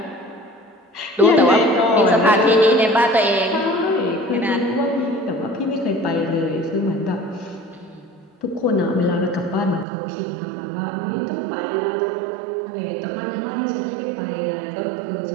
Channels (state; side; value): drops out; left; at 9.9 s